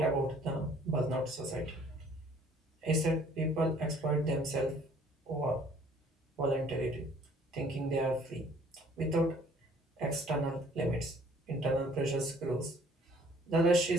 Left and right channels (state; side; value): normal; both; correlation 0.57